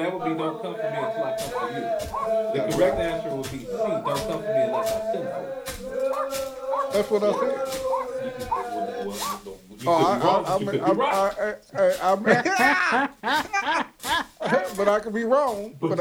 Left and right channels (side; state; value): both; identical; correlation 1.00